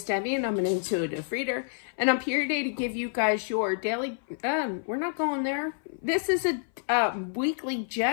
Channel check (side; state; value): right; silent; 57 dB below the other